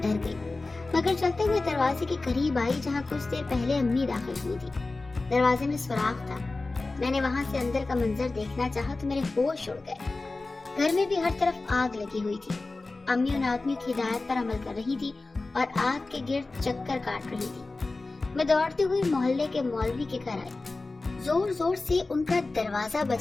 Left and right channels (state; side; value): quieter; right; 3.4 dB